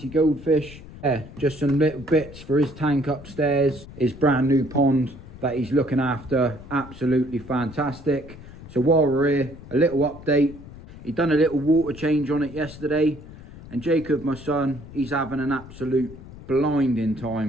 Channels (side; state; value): left; noise; rumble, 16 dB below the sound